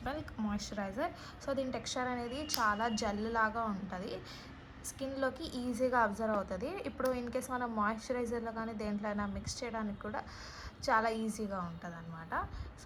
milk moisturiser. So దీని టెక్స్చర్ అనేది చాలా జెల్ లాగా ఉంటుంది, స్కిన్లోకి ఈజీగా అబ్జర్వ్ అవుతుంది. ఇప్పుడు ఇన్ కేస్ మనం మాయిశ్చరైజర్లో కానీ దేంట్లో అయినా మిక్స్ చేయడానికి కూడా చాలా ఈజీగా ఉంటుంది అనమాట.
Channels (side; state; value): both; identical; correlation 1.00